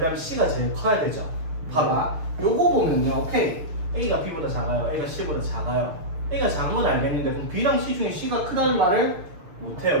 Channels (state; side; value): late; left; 6.7 ms